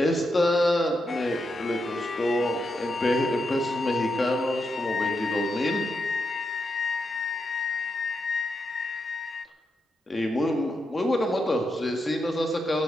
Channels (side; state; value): both; normal; correlation 0.85